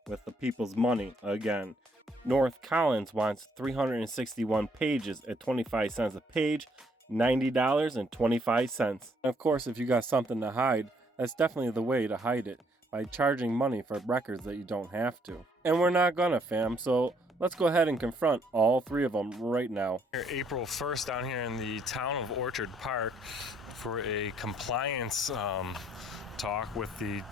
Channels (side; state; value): both; normal; correlation 0.68